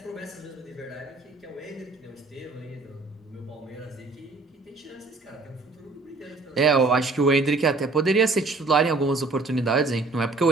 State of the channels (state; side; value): quieter; left; 3.6 dB